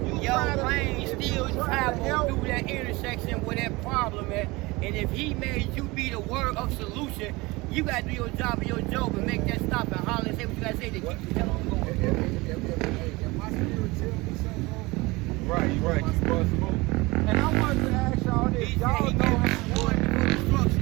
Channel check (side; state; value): left; quieter; 22.9 dB